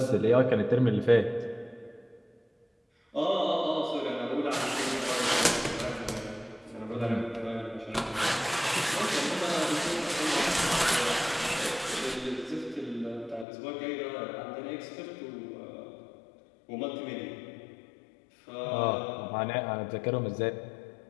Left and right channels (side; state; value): right; drops out; at 13.5 s